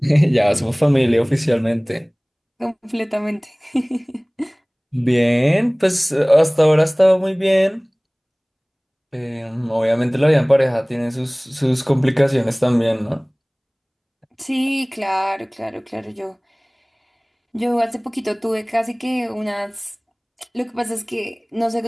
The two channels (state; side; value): identical; both; correlation 1.00